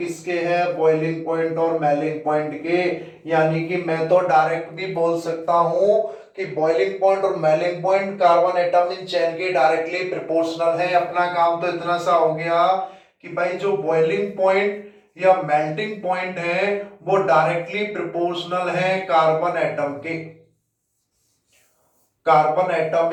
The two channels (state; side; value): identical; both; correlation 1.00